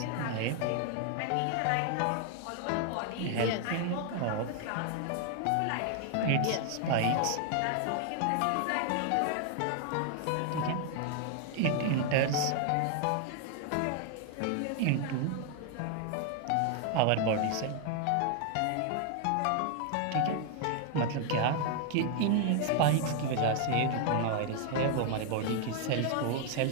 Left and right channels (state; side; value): different; both; correlation 0.00